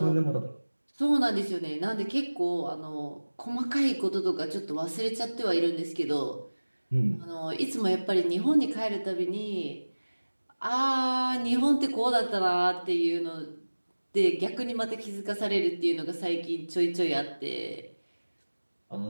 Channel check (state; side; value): inverted; both; correlation -1.00